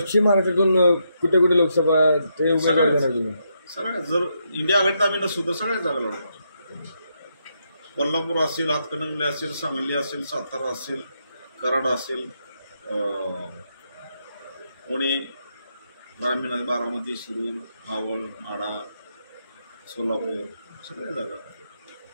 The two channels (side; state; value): both; inverted; correlation -0.80